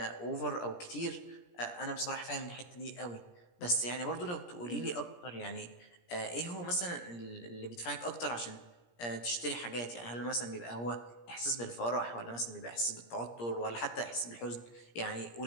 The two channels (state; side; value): late; right; 17 ms